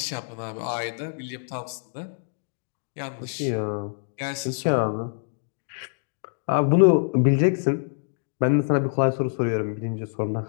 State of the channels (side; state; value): right; silent; digital silence